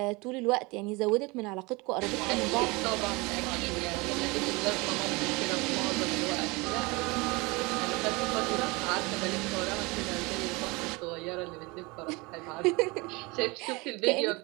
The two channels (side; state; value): left; quieter; 25.4 dB